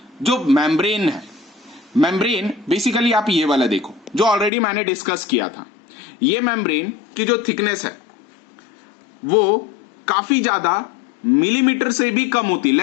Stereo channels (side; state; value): right; drops out; at 4.5 s